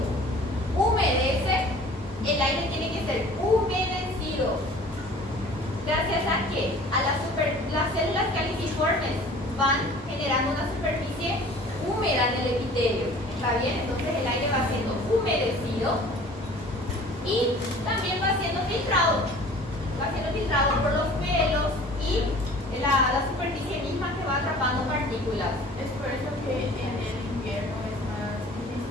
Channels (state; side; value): normal; both; correlation 0.47